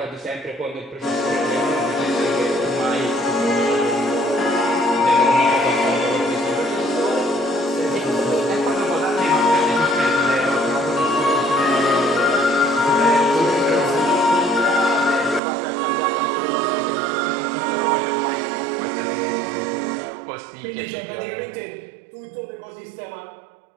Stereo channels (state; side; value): drops out; left; at 15.4 s